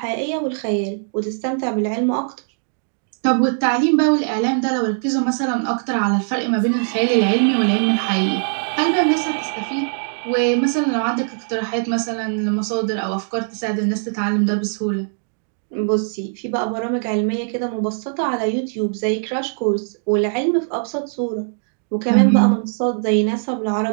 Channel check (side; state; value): left; silent; 65 dB below the other